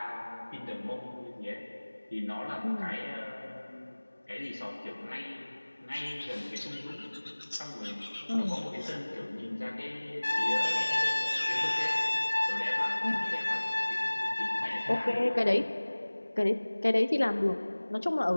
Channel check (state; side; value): inverted; both; correlation -1.00